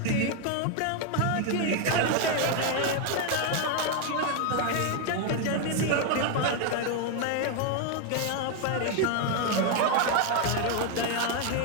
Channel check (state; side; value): different; both; correlation 0.01